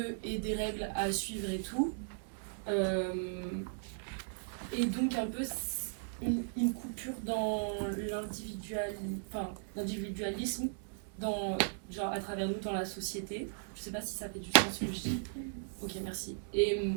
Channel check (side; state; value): left; silent; 53 dB below the other